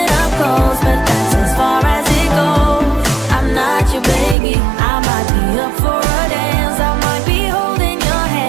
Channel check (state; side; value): drops out; left; at 4.4 s